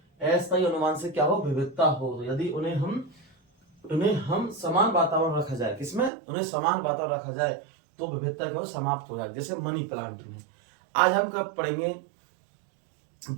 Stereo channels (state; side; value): drops out; left; at 6.1 s